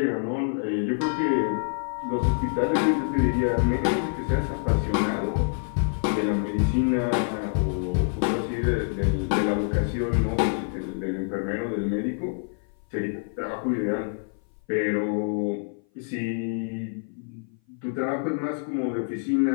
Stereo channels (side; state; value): right; silent; 57 dB below the other